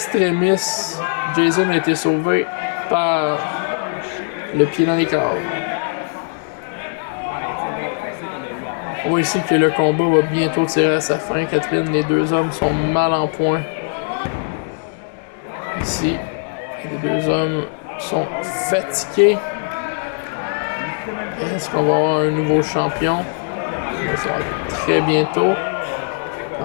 Jason a été sauvé par le pied dans les câbles. On voit ici que le combat va bientôt tirer à sa fin. Catherine, les deux hommes sont mal en point. Ici, les deux hommes sont fatigués. Est-ce qu'on va avoir un nouveau champion? Ça va être très bientôt.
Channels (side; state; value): right; silent; digital silence